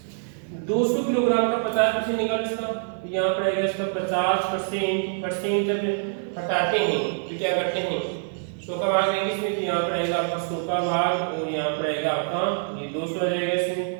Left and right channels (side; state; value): left; silent; 56 dB below the other